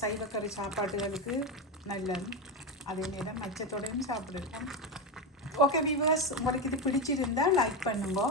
சைவக்கறி சாப்பாட்டுகளுக்கு நல்லது. அதே நேரம் மச்சத்தோடையும் சாப்பிடுவோம். ஓகே வீவர்ஸ், உங்களுக்கு இது பிடிச்சிருந்தால் லைக் பண்ணுங்க,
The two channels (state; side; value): normal; both; correlation 0.13